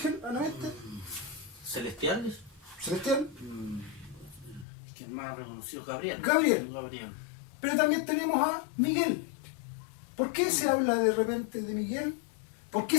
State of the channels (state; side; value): drops out; right; at 4.7 s